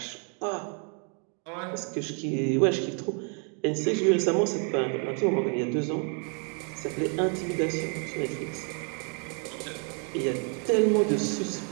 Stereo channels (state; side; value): quieter; left; 39.4 dB